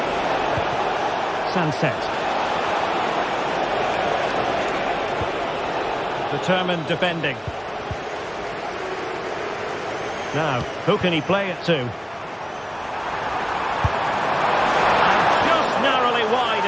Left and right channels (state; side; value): identical; both; correlation 1.00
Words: Sunset. Determined defending. Now, who can he play it to? And just narrowly wide